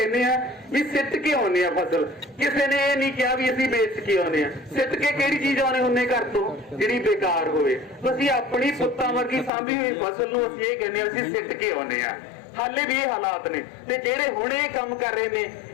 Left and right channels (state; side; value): drops out; right; at 9.5 s